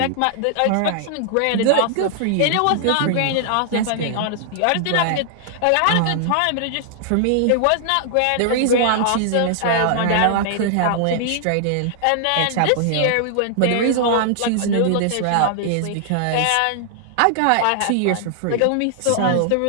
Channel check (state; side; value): different; both; correlation -0.01